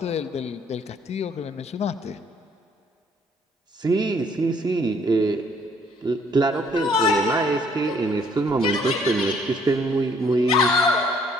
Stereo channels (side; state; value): both; normal; correlation 0.63